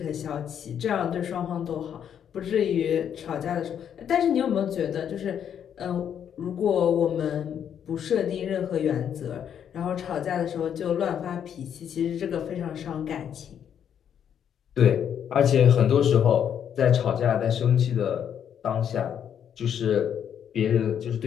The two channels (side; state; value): right; quieter; 8.8 dB